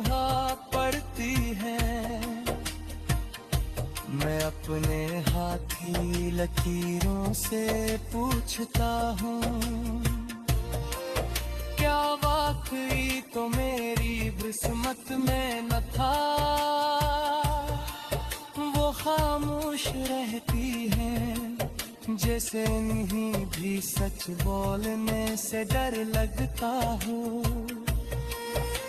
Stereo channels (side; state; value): both; identical; correlation 1.00